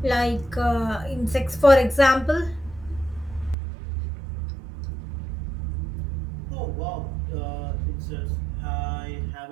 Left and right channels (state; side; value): drops out; left; at 3.6 s